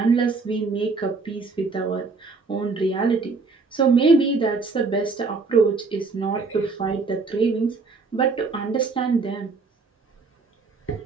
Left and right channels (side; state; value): left; quieter; 4.2 dB